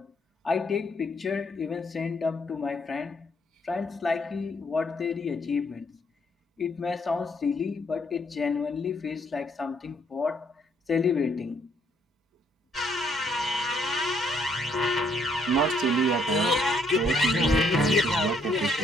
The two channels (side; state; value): both; normal; correlation 0.70